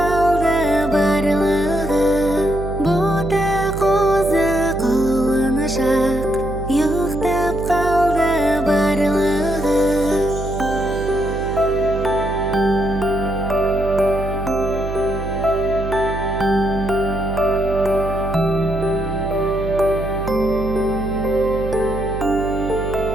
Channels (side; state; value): right; noise; hum, 7 dB below the sound